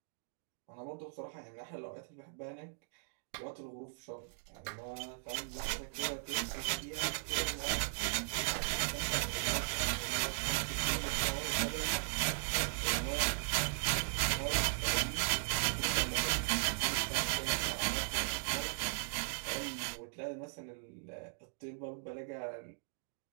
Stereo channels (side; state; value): left; silent; digital silence